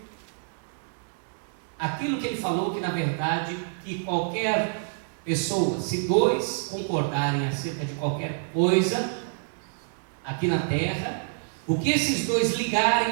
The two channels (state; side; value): silent; left; 60 dB below the other